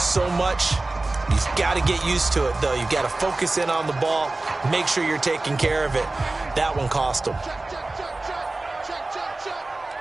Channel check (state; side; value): quieter; left; 3.1 dB